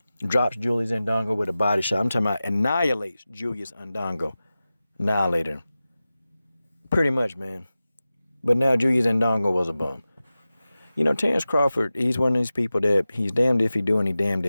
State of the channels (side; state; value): both; inverted; correlation -0.95